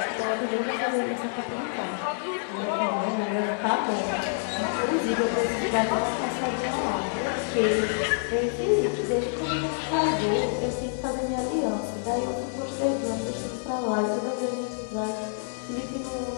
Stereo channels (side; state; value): right; silent; digital silence